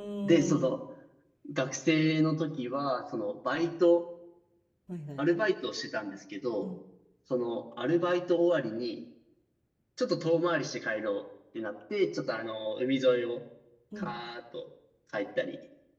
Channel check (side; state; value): both; identical; correlation 1.00